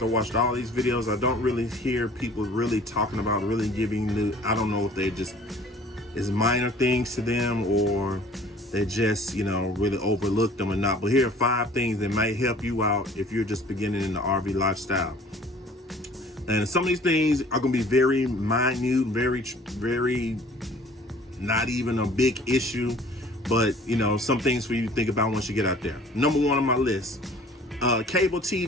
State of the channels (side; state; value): both; normal; correlation 0.51